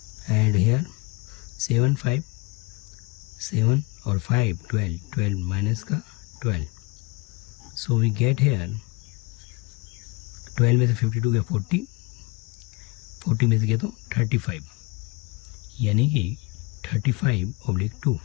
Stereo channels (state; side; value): quieter; right; 25.5 dB